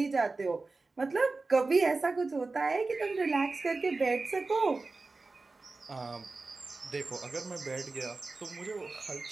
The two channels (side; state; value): left; quieter; 3.7 dB